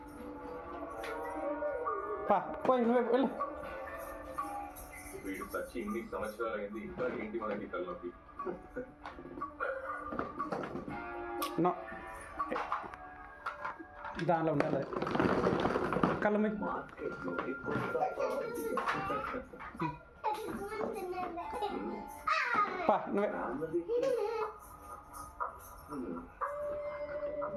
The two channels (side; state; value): both; identical; correlation 1.00